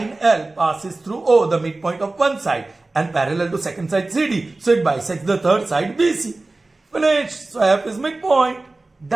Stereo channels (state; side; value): quieter; left; 3.1 dB